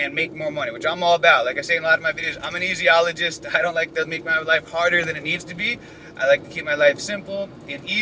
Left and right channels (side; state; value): both; identical; correlation 1.00